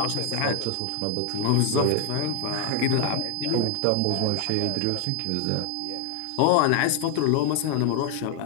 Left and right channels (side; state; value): both; different; correlation 0.00